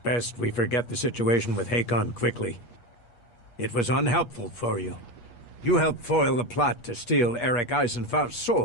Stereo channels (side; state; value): right; late; 8.4 ms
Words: we forget the situation with Hakon quickly. It was unhelpful for you. You helped foil the plot to steal Eric Eisenfaust's